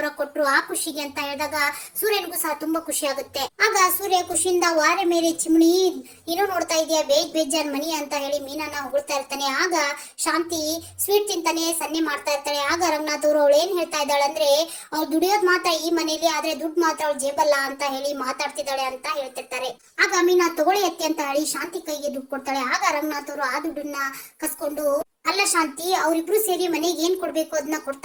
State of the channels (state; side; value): identical; both; correlation 1.00